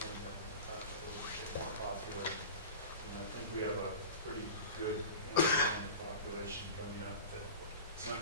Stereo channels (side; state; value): both; inverted; correlation -0.34